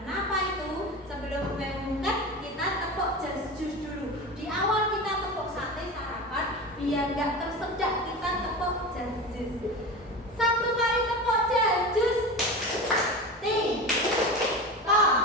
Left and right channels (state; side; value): normal; both; correlation 0.28